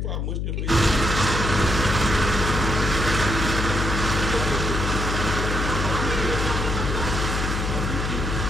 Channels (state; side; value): noise; left; hum, 1 dB below the sound